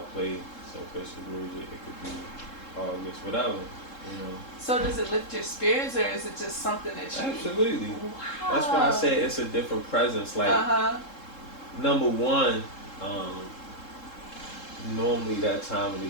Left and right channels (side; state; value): right; late; 3.7 ms